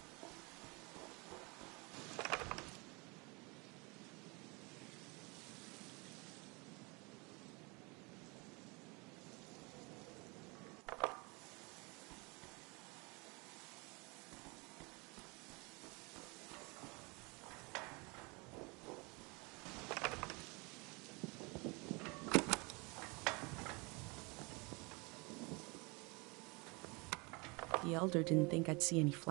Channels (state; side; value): quieter; left; 28.5 dB